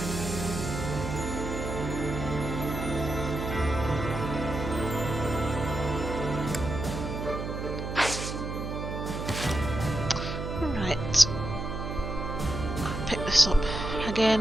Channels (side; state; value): right; noise; hum, 5 dB below the sound